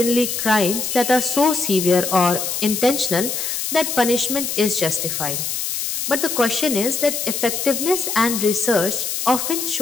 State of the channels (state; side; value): noise; left; hiss, 3 dB below the sound